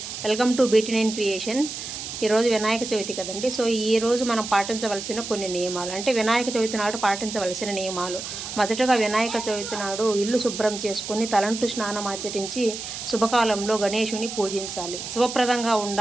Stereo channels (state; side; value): noise; right; hiss, 8 dB below the sound